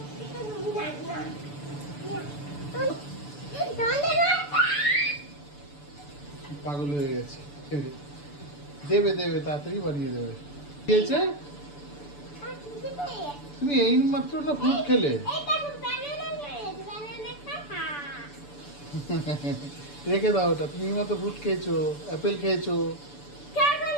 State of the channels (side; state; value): right; late; 6.9 ms